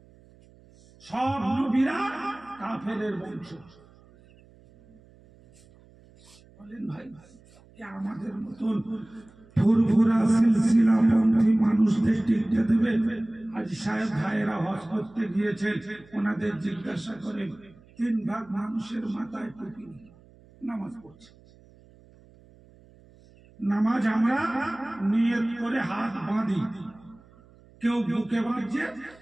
সব নবীরা কাফেরের বংশ। বলেন ভাই, আমাদের মতন ফুরফুরা সিলসিলা পন্থী মানুষদের টিকতে দেবে? আজ সাহেব ভাইয়েরা হজ করতে গিয়েছেন, ওনাদের জিজ্ঞাসা করেন 3 ভাগ মানুষের মাথায় টুপি নামাজ পড়ছে। নামাজ আমরা নিয়ত করে হাত বাঁধি, কেউ বুকে বাঁধছে,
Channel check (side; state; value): right; noise; hum, 26 dB below the sound